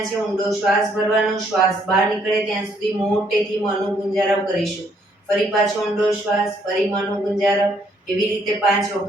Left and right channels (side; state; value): both; normal; correlation 0.68